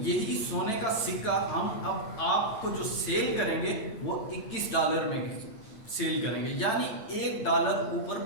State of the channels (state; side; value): late; right; 9.0 ms